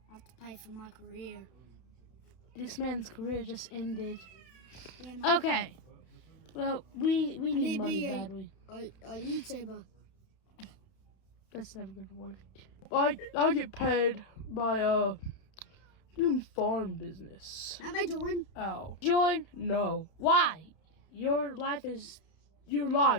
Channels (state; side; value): late; right; 32 ms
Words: I have to pay for my career. This man's career just ended. Yeah, mate. Okay. Well, we need need money be a- badly. A YouTuber. That's never gonna work. I get paid by doing farm business. That made you win. Oh. Join? No. Why? Your life is